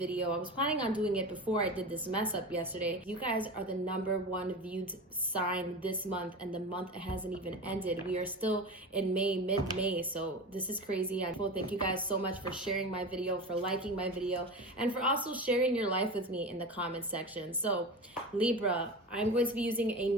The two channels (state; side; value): normal; both; correlation 0.27